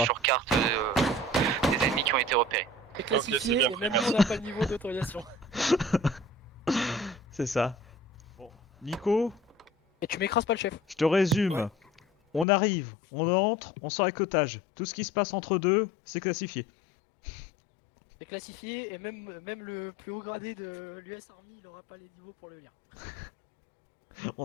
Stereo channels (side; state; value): right; drops out; at 12.5 s